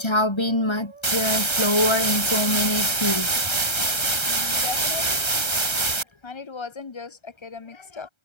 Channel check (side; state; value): right; late; 1.3 ms